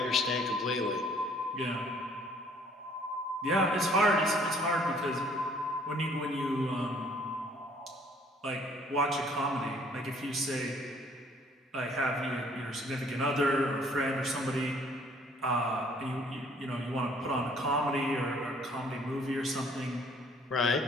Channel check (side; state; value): both; normal; correlation 0.59